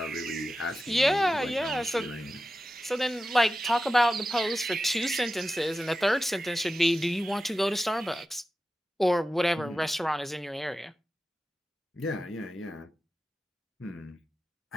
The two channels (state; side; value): normal; both; correlation 0.93